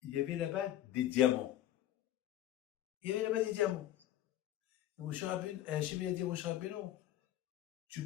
il y avait là-bas des diamants. Il y avait là-bas des diamants. Mon cher Rabbeinu, Hachem, il a dit à mon cher Rabbeinu,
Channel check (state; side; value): quieter; right; 12.9 dB